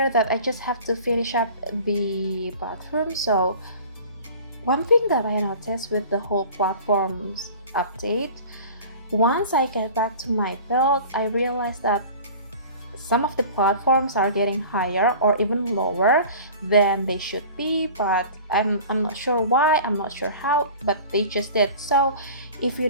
that I just have to finish up the bathroom. So one thing that I noticed with the whole platforms update, once I get back to my build, I realized that some of the platforms are getting higher or even lower than they should be, but I'm not sure why, I'm not sure how, but they just did. So if you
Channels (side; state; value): both; inverted; correlation -0.41